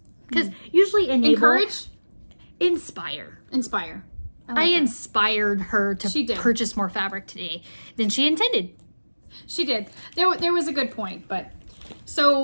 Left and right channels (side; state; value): both; inverted; correlation -1.00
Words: Because usually enable... Encourage? Inspire. Inspire. I inspired her to purchase more fabric today than she intended. She did. There was a good point, but...